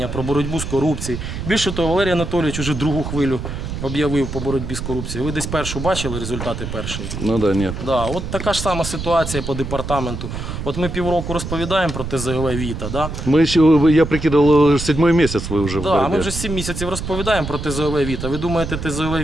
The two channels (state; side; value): noise; right; rumble, 6 dB below the sound